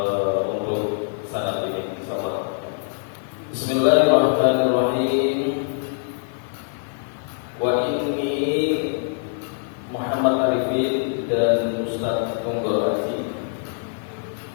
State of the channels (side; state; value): right; silent; digital silence